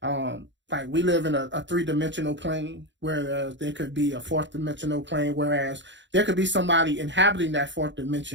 Like we live in a 3-dimensional plane, whereas there could be a 4th-dimensional plane, whereas there could be somebody inhabiting that 4th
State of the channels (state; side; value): late; left; 0.53 ms